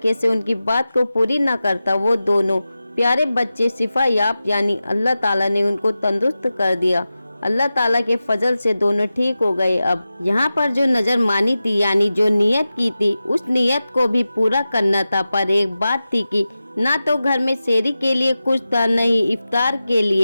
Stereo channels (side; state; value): both; inverted; correlation -0.94